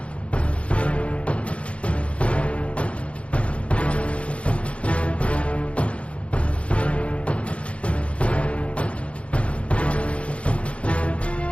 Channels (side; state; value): right; late; 0.062 ms